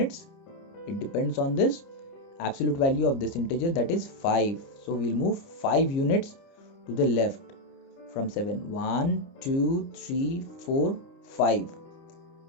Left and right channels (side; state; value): right; late; 30 ms